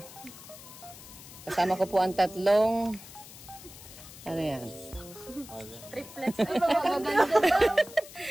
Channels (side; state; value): left; noise; hiss, 17 dB below the sound